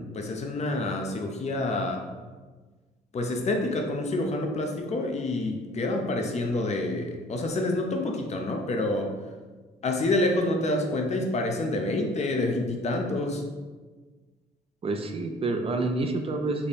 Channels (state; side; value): normal; both; correlation 0.51